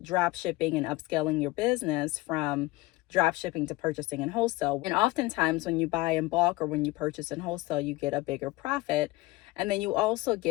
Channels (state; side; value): quieter; right; 19.7 dB